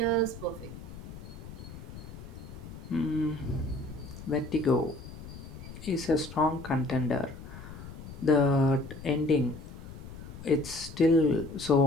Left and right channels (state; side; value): noise; left; rumble, 13 dB below the sound